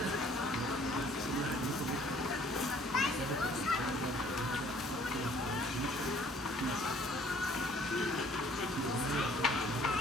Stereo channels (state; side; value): normal; both; correlation 0.58